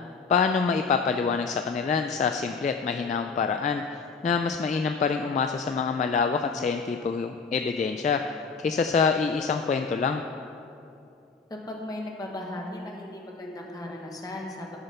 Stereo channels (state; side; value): quieter; right; 4.9 dB